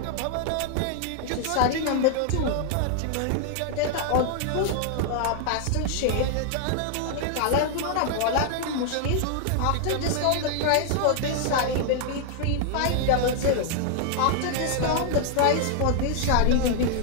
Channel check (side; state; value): both; different; correlation 0.00